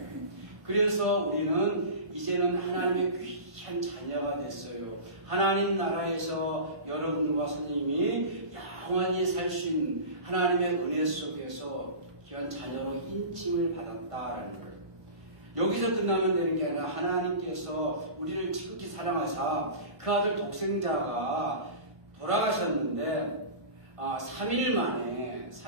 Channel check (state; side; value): late; left; 1.6 ms